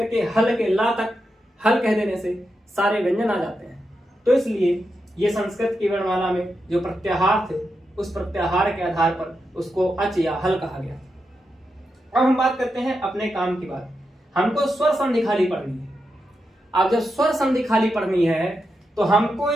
के हल के ला तक हल कह देने से सारे व्यंजन आ जाते हैं। तो इसलिए ये संस्कृत की वर्णमाला में जो प्रत्याहार थे, उस प्रत्याहार के आधार पर उसको अच या हल कहा गया। अब हम बात करते हैं अपने काम की बात। हमको स्वर संधि खाली पढ़नी है। अब जब स्वर संधि खाली पढ़नी है तो हमको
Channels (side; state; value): both; normal; correlation 0.87